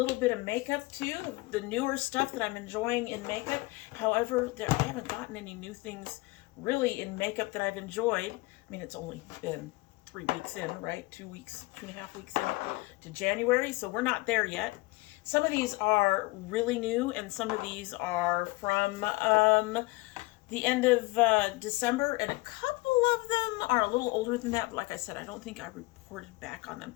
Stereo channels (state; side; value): quieter; right; 22.7 dB